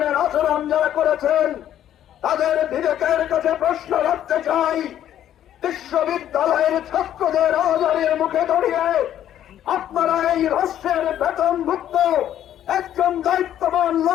আচরণ যারা করেছেন তাদের বিবেকের কাছে প্রশ্ন রাখতে চাই। বিশ্ববিদ্যালয়ের ছাত্রদের আওয়াজের মুখে দাঁড়িয়ে আপনারা এই রাষ্ট্রের বেতনভুক্ত একজন দায়িত্ববান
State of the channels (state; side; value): quieter; right; 11.1 dB